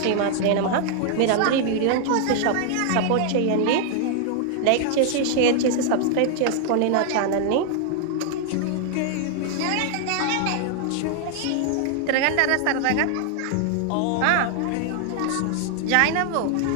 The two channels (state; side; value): different; both; correlation 0.00